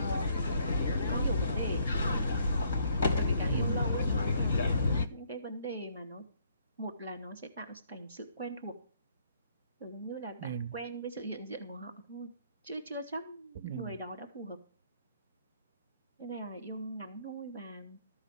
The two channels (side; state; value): both; inverted; correlation -0.67